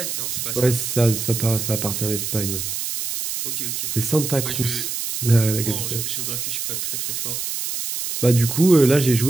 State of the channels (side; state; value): right; noise; hiss, 4 dB below the sound